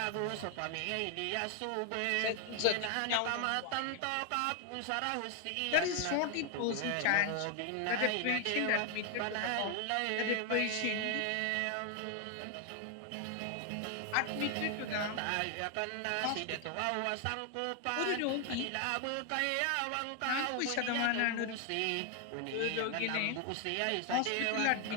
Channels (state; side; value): different; both; correlation 0.00